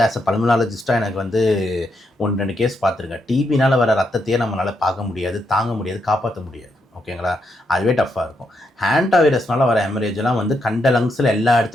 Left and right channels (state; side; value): normal; both; correlation 0.80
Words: ஆஸ் அ பல்மனாலஜிஸ்ட்டாக எனக்கு வந்து 1-2 கேஸ் பார்த்துருக்கேன். டிபினால் வர ரத்தத்தையே நம்மளால் பார்க்க முடியாது, தாங்க முடியாது, காப்பாற்ற முடியாது. ஓகேங்களா, அதுவே டஃப்பாக இருக்கும். ஹேண்டா வைரஸ்னால வர ஹெமரேஜெலாம் வந்து கண்ட லங்ஸில் எல்லா